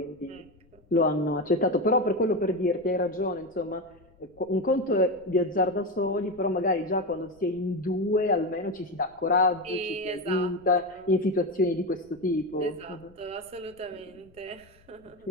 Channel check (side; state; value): left; noise; rumble, 29 dB below the sound